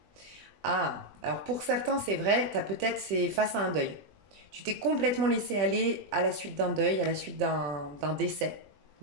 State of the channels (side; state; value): left; late; 20 ms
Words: Ah, alors pour certains, c'est vrai, c'est face à un deuil. Tu t'es complètement laissé aller à la suite d'un deuil, à la suite d'un décès,